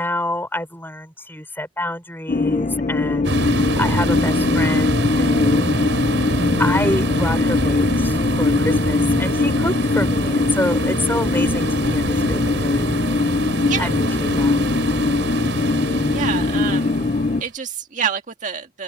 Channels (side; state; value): both; normal; correlation 0.62